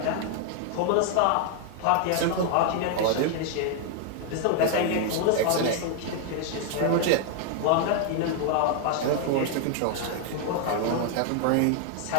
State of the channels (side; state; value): both; different; correlation 0.00